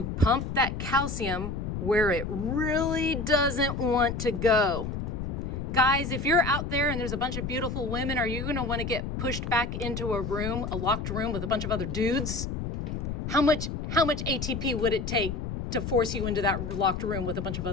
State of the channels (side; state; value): left; noise; rumble, 4 dB below the sound